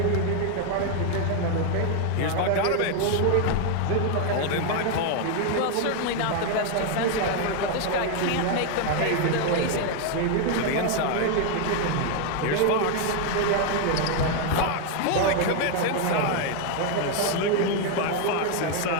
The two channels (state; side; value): different; both; correlation 0.01